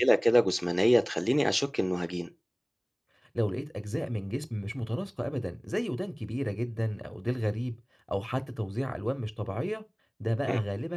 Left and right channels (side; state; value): both; identical; correlation 1.00